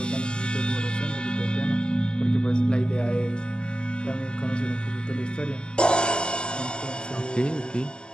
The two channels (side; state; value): right; late; 0.050 ms